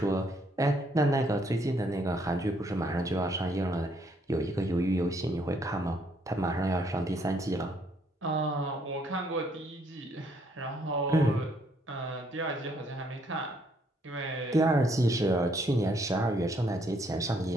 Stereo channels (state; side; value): normal; both; correlation 0.69